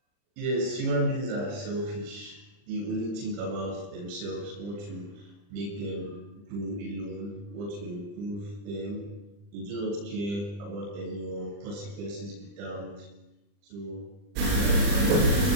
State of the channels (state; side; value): late; left; 40 ms